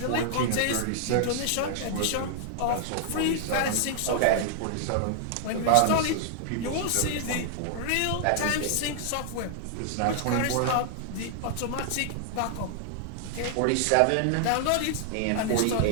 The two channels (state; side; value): different; both; correlation -0.01